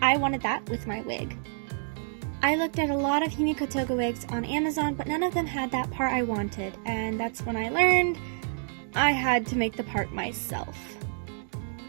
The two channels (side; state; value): left; silent; digital silence